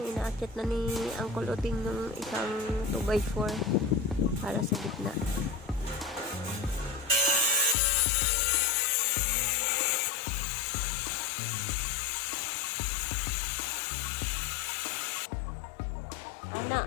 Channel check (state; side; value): drops out; right; at 7.8 s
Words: inaakit na ni Uncle Uting ng isang 2x4 para sa gitna. Anak.